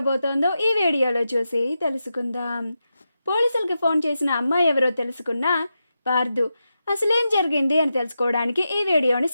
ఈ వీడియోలో చూసి తెలుసుకుందాం. పోలీసులకి ఫోన్ చేసిన అమ్మాయి ఎవరో తెలుసుకున్న పార్దు అసలేం జరిగింది అని తెలుసుకోవడానికి ఈ వీడియోని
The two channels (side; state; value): both; inverted; correlation -0.89